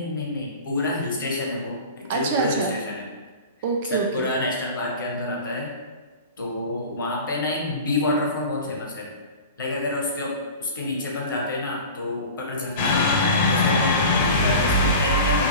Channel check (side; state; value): both; inverted; correlation -0.35